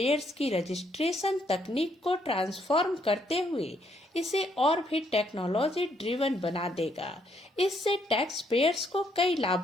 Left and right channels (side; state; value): both; normal; correlation 0.72